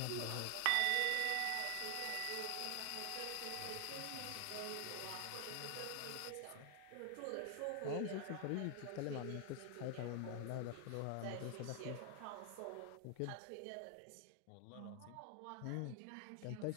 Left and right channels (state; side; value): different; both; correlation 0.00